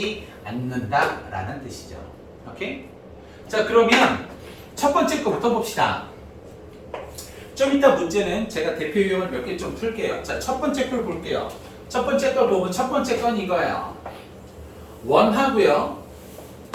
않는다라는 뜻이죠. 오케이? 자, 그러면 첫 번째 거부터 봅시다. 좀 이따 문제는 제가 대표 유형을 몇 개 좀 풀게요. 자, 첫 번째 걸 볼게요. 첫 번째 걸 보면 첫 번째 건 이거예요. 원하고요.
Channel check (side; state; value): both; identical; correlation 1.00